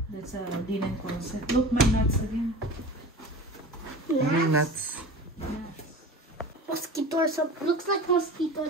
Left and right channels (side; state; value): both; normal; correlation 0.36